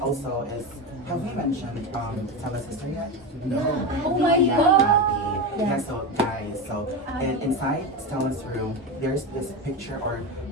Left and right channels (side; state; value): both; normal; correlation 0.18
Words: also is, have we mentioned Stella's sister yet? Oh my Yeah, God. Abby. Yeah, so guys, so inside Stella's room, there's this picture, or